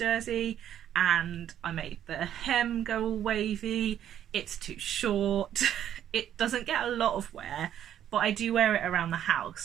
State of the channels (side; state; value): left; quieter; 10.5 dB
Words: and I made the hem go all wavy. It's too short. It doesn't get a lot of wear, but I do wear it around the